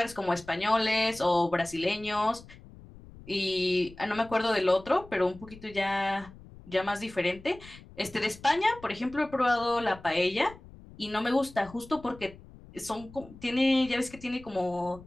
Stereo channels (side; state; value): left; noise; rumble, 20 dB below the sound